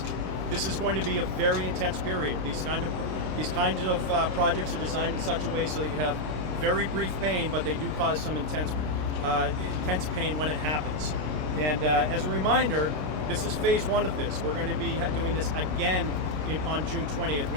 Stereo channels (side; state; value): left; late; 26 ms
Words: this is going to be a very intense period. These kinds of projects are designed in such a way so that you have very brief pain, but they do cause some intense pain when it happens. And as a reminder, this is phase one of this. We're going to be doing this again on June 20th